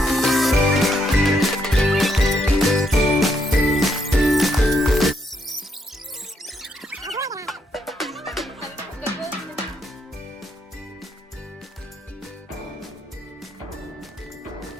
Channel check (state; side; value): normal; both; correlation 0.76